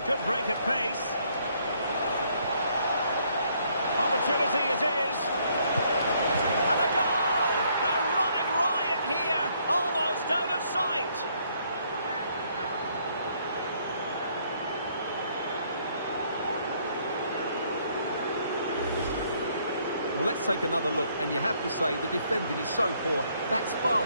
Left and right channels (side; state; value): both; inverted; correlation -0.68